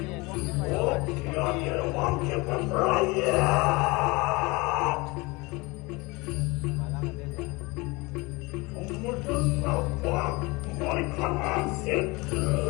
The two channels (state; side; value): quieter; right; 24.8 dB